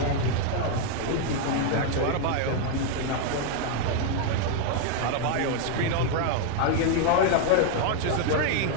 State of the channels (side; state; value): both; different; correlation 0.01